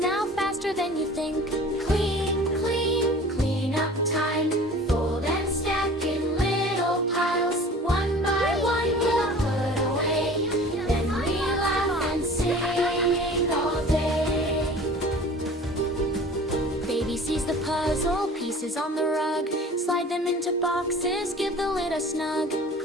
faster than you think. Clean, clean, clean up time. Fold and stack in little piles. One by one we'll put away. Then we laugh and sing all day. Baby sees the puzzle pieces on the rug. Slide them into boxes, give the lid a snug.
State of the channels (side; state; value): both; normal; correlation 0.43